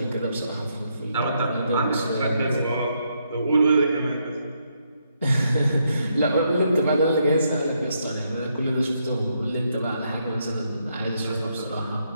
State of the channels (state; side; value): inverted; both; correlation -0.77